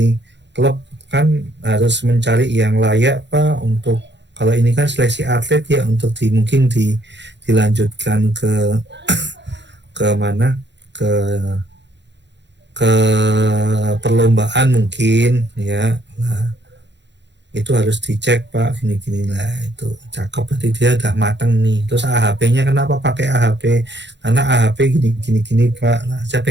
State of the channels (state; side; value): late; left; 0.52 ms